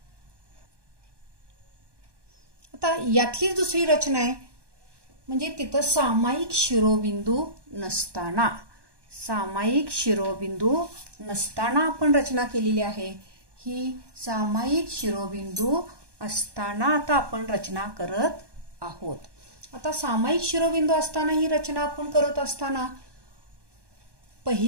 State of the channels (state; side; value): late; left; 1.2 ms